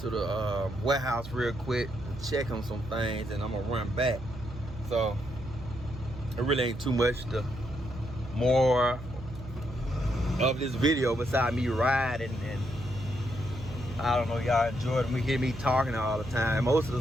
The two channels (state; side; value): noise; right; hum, 12 dB below the sound